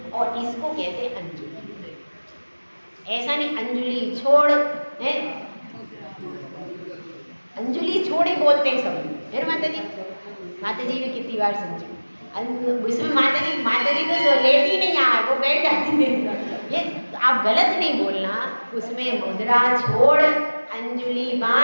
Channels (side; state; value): both; inverted; correlation -1.00